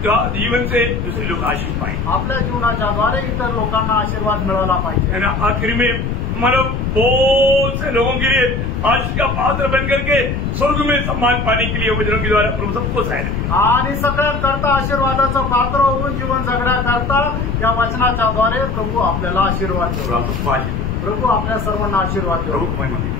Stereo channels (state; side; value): noise; left; rumble, 2 dB below the sound